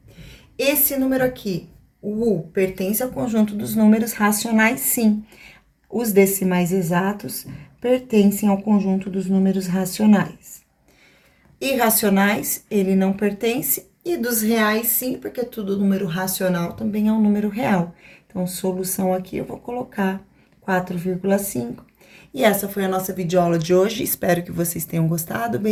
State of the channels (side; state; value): both; identical; correlation 1.00